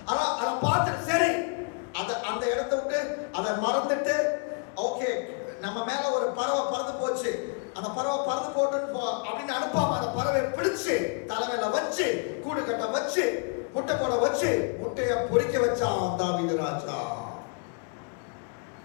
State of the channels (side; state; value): right; quieter; 39.8 dB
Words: ஆனா அதை பார்த்துட்டு சரி அந்த இடத்தை விட்டு அதை மறந்துட்டு, ஓகே நம்ம மேல ஒரு பறவை பறந்து போச்சு, அந்த பறவை பறந்து போட்டு அப்படின்னு அனுப்பாம அந்த பறவை பிடிச்சு தலைமையில வச்சு கூடு கட்ட வச்சு முட்டை போட வச்சு முட்டைய பொறிக்க வச்சான் தாவீது ராஜா.